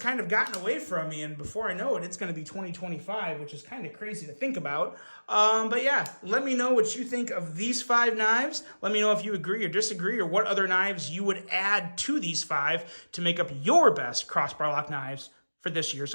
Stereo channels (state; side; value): inverted; both; correlation -1.00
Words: of gotten away from me, and before I know it, it's going to be 2025, which is kind of crazy to think about. But yeah, let me know what you think of these 5 knives. Let me know if you agree or disagree, or what other knives you would add to these 5 to make up your best crossbar lock knives for this year